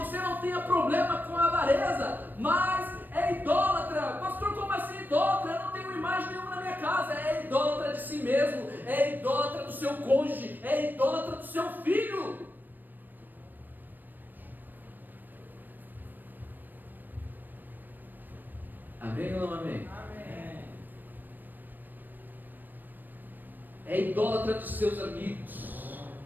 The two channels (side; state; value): left; late; 0.091 ms